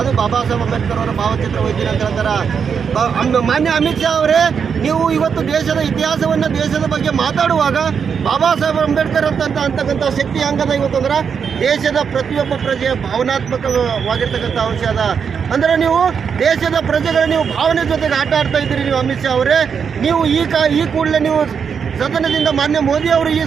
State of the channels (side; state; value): left; quieter; 6.7 dB